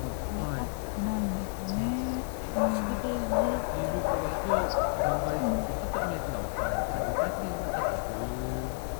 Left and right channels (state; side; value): silent; right; 57 dB below the other